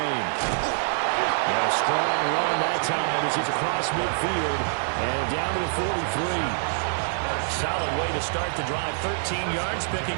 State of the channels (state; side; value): silent; left; 61 dB below the other